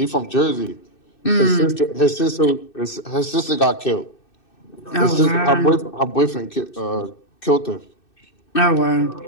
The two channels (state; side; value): late; right; 2.6 ms